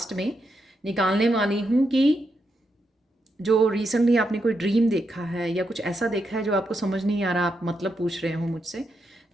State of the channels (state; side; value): normal; both; correlation 0.83